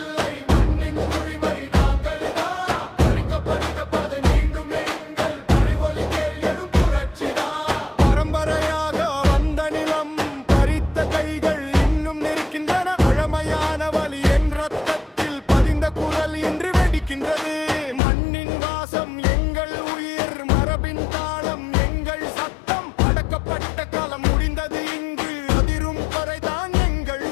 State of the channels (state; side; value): drops out; right; at 18.0 s